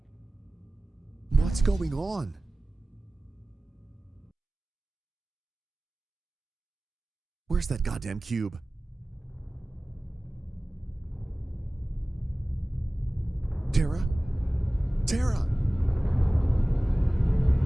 What's going on? Where's that goddamn cube? Tara? Tara!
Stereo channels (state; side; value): normal; both; correlation 0.97